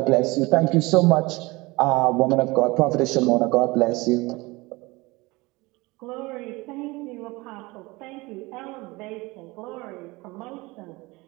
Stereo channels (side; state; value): left; quieter; 23.0 dB